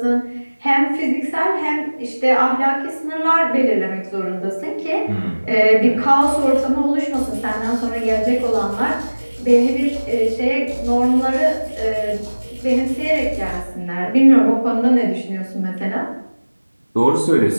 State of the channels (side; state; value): both; inverted; correlation -1.00